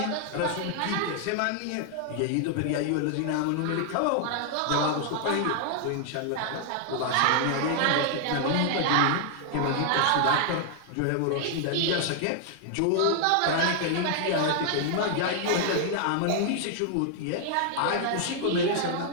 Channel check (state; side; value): different; both; correlation 0.00